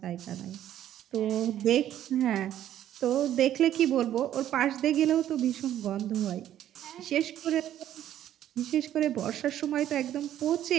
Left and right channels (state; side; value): quieter; left; 11.6 dB